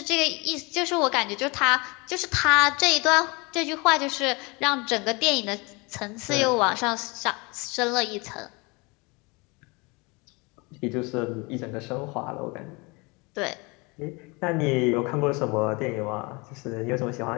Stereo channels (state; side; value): quieter; right; 27.5 dB